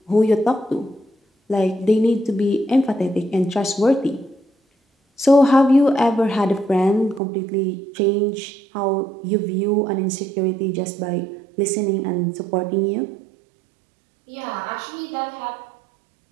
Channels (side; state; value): left; drops out; at 7.2 s